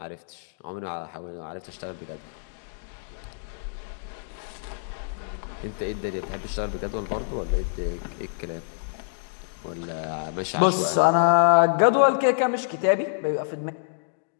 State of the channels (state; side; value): silent; right; digital silence